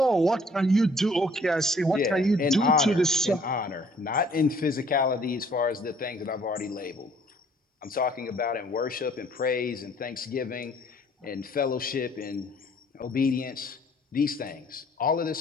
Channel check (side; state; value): both; normal; correlation 0.59